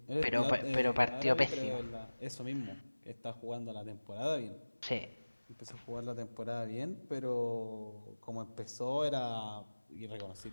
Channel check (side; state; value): both; inverted; correlation -1.00